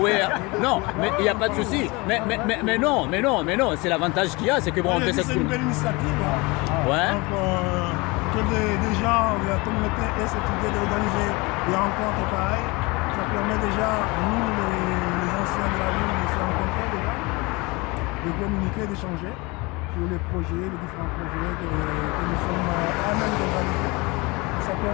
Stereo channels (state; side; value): quieter; right; 25.4 dB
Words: wewe non mais il y a pas de souci mais non c'est l'avantage qu'il y a c'est que bon on peut s'exprimer. C'est une belle initiative hein. Ouais. Donc des gens de la communauté et cette idée d'organiser des rencontres pareilles ça permet déjà nous les anciens de la ville de se rencontrer déjà de communiquer, d'échanger sur les projets, les différents projets que nous sommes à même d'organiser. Ça